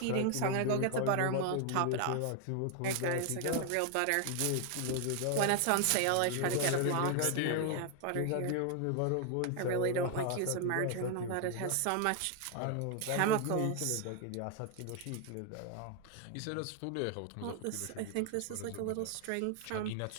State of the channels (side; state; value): both; different; correlation 0.01